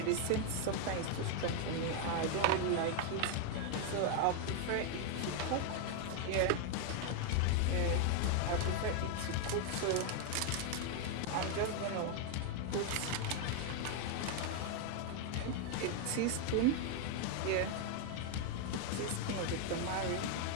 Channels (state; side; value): different; both; correlation 0.01